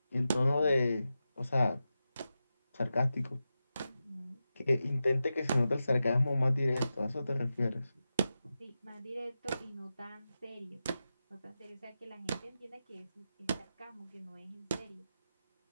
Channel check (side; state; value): both; inverted; correlation -0.91